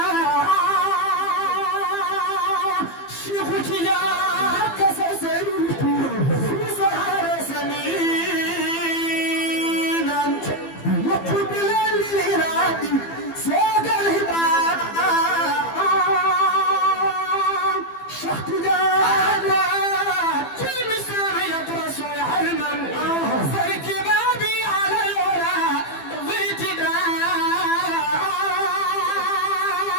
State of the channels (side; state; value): right; late; 15 ms